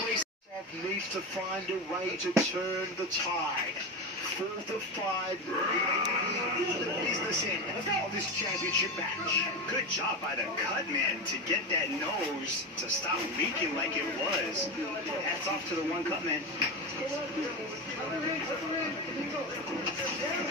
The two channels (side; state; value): both; normal; correlation 0.19